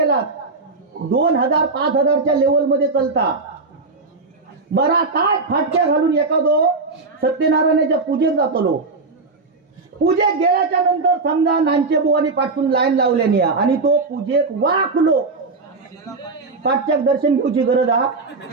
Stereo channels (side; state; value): left; quieter; 3.9 dB